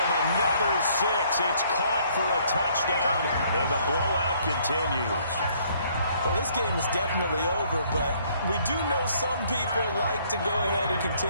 another 6. It's caught for a touchdown, and the blowout continues. Well, this game is definitely over, but we do know some people like to go ahead and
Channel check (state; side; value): inverted; both; correlation -0.63